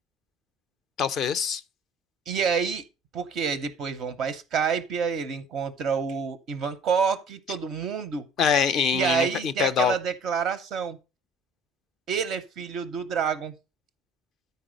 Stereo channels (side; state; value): both; normal; correlation 0.48